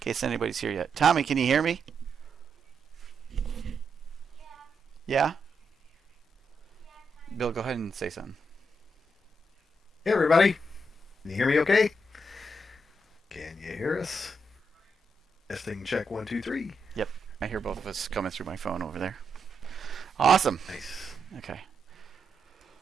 anybody's here yet. Tommy, can you hear me? Yeah? Bill, go ahead and say something. Hey, everybody. Can you hear me okay? Can you hear us? Testing check 1, 2, 3. Yep. I hear both of us coming through my phone over there. Awesome. Nice. Okay.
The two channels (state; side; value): normal; both; correlation 0.82